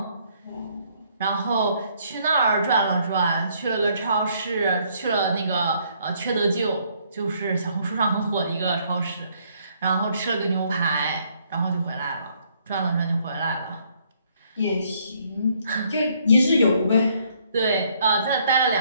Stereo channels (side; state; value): both; inverted; correlation -0.67